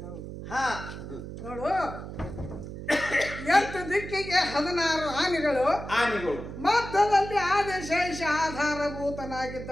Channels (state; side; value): noise; right; hum, 10 dB below the sound